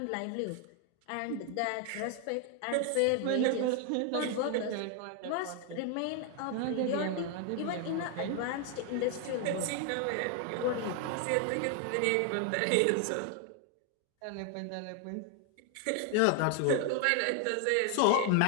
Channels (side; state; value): both; different; correlation 0.00